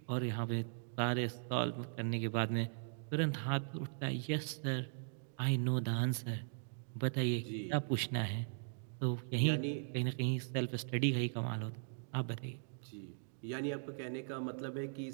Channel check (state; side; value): silent; left; digital silence